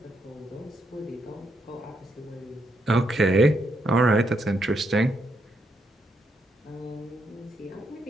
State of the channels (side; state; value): both; normal; correlation 0.78